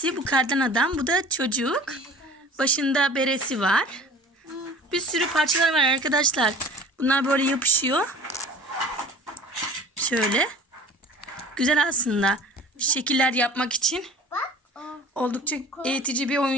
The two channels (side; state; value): both; normal; correlation 0.44